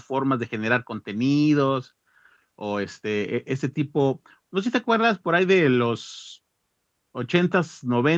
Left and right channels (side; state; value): both; identical; correlation 1.00